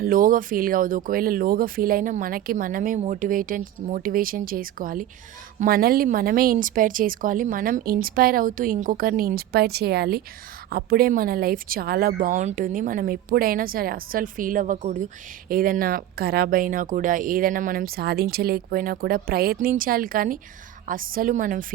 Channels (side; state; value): left; quieter; 12.6 dB